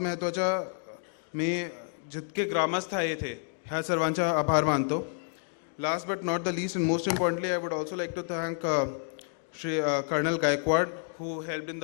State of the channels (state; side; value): silent; right; 58 dB below the other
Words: महत्त्वाच्या मी जितके ग्रामस्थ आहे येथे ह्या सर्वांचा आभार मानतो. Last but not the least, and most importantly, I would also like to thank Shri Colonel Gaikwad, who helped in